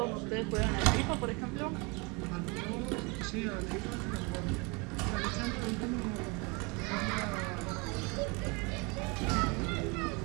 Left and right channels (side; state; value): left; quieter; 29.2 dB